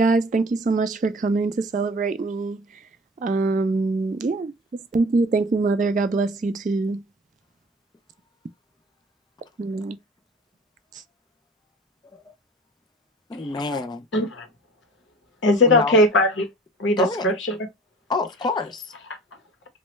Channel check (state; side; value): normal; both; correlation 0.42